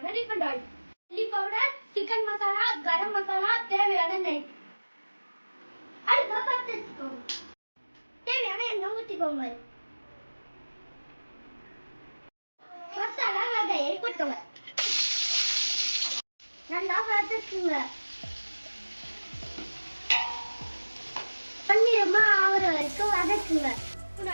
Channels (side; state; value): both; inverted; correlation -1.00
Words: refined oil, chilli powder, chicken masala, garam masala, தேவையான நெய். அடுப்பை பற்ற வச்சுக்கோங்க. தேவையான எண்ணெய் ஊற்றிக்கோங்க. மசாலா வகையை கொட்டுங்க. நல்லா வதக்குங்க. பன்னிரமா ஆகிற வரைக்கும் வதக்குங்க.